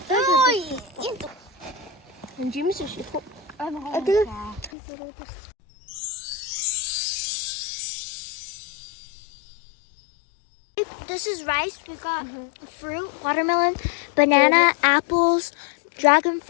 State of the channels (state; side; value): drops out; right; at 4.7 s